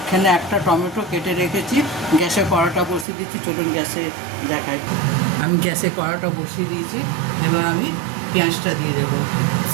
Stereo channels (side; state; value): left; drops out; at 3.1 s